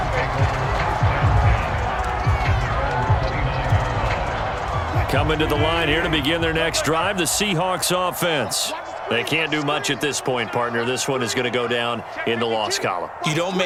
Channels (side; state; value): both; identical; correlation 1.00